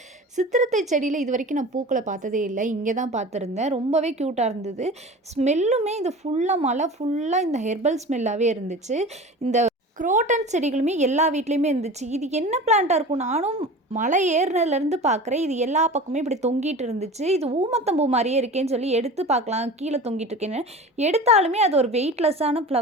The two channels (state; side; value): normal; both; correlation 0.36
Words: சித்திரத்தை செடியில் இது வரைக்கும் நான் பூக்களை பார்த்ததே இல்லை, இங்கே தான் பார்த்துருந்தேன். ரொம்பவே க்யூட்டாக இருந்தது. ஸ்மெல்லுமே இது ஃபுல்லாக மலை ஃபுல்லாக இந்த ஹெர்பல் ஸ்மெல்லாகவே இருந்துச்சு. இந்த குரோட்டன் செடிகளுமே எல்லா வீட்லேயுமே இருந்துச்சு. இது என்ன பிளான்ட்டாக இருக்கும், நானும் மலை ஏறினதுலேருந்து பார்க்குறேன். இது எல்லா பக்கமே இப்படி தொங்கிட்டு இருந்துச்சு. இது ஊமத்தம்பூ மாதிரியே இருக்கேன்னு சொல்லி எடுத்து பார்க்கலாம், கீழே தொங்கிட்டு இருக்கேன்னு எடுத்தாலுமே அது ஒரு வெயிட்லெஸ்ஸான